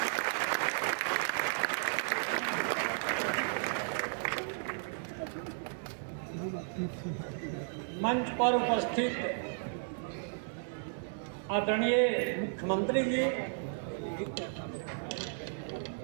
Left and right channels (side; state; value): left; silent; digital silence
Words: मंच पर उपस्थित आदरणीय मुख्यमंत्री जी,